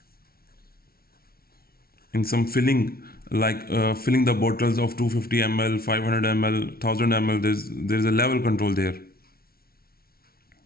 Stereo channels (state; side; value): late; right; 0.44 ms